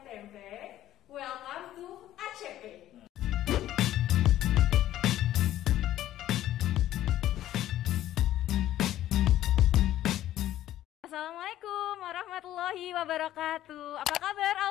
tempe. Welcome to ACP. Assalamualaikum warahmatullahi wabarakatuh. Apa kabar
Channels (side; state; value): right; quieter; 13.3 dB